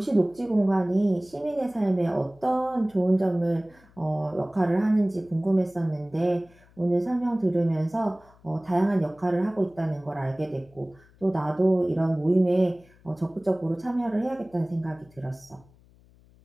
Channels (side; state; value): left; noise; hum, 28 dB below the sound